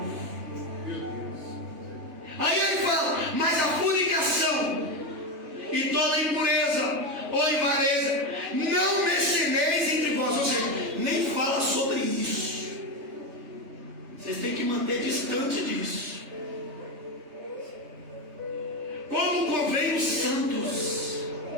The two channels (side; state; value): left; late; 3.2 ms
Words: Meu Deus. Aí ele fala, mas a fornicação e toda impureza ou avareza, não mencioneis entre vós. Ou seja, nem fala sobre isso. Vocês têm que manter distante disso. Como convém os santos.